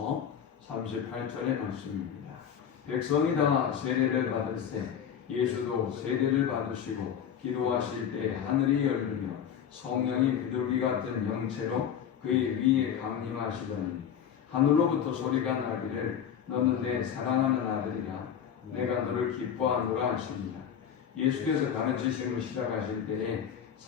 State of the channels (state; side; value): quieter; right; 8.6 dB